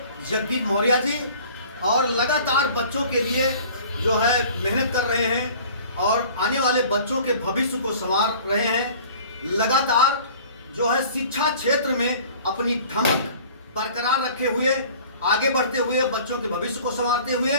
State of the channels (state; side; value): inverted; both; correlation -0.47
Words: जगदीप मौर्य जी, और लगातार बच्चों के लिए जो है मेहनत कर रहे हैं और आने वाले बच्चों के भविष्य को संवार रहे हैं। लगातार जो है शिक्षा क्षेत्र में अपनी धमक बरकरार रखे हुए, आगे बढ़ते हुए, बच्चों के भविष्य को संवारते हुए